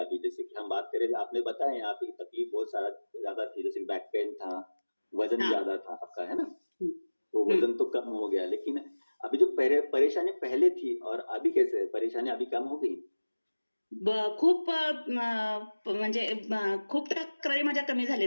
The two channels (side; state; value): both; inverted; correlation -1.00